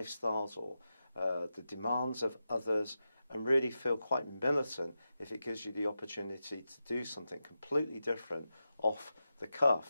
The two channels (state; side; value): inverted; both; correlation -0.90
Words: or the demands of others, and really feel quite militant if it gives you the opportunity to do something completely different off the